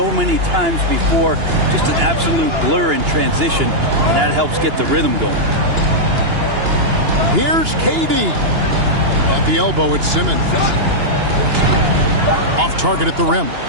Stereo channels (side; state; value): left; late; 2.9 ms